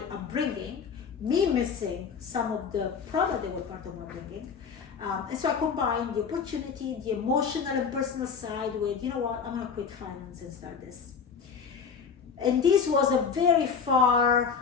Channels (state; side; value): quieter; right; 6.2 dB